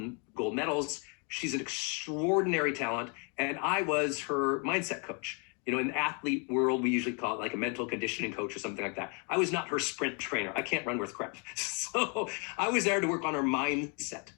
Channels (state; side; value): quieter; right; 35.6 dB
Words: medals. She's an extraordinary talent, and I was her mindset coach. In the athlete world, we usually call it like a mental conditioning coach or something like that. I was not her sprint trainer. I can't run worth crap. So I was there to work on her mindset.